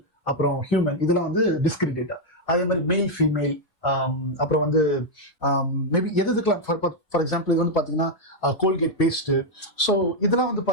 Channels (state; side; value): late; right; 4.1 ms